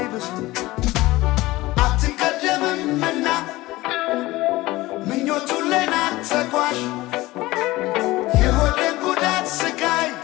አትቀደምምና ምኞቱን ለናት ተጓዥ የሆዴን ጉዳት ስቃይ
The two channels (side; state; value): right; quieter; 19.0 dB